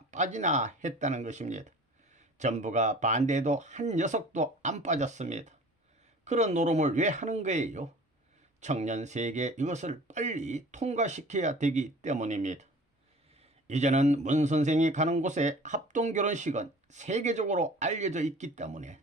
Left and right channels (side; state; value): both; normal; correlation 0.45